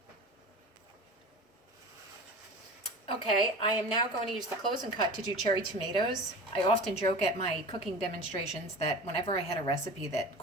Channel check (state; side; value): normal; both; correlation 0.35